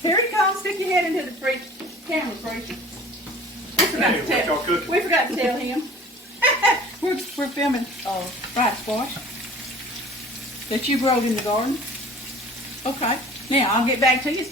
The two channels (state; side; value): normal; both; correlation 0.45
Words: Here he comes. Stick your head into the camera, preacher. We forgot to tell him. we're filming fried squash that you growed in the garden. Okay. Now I'll get back to you. It's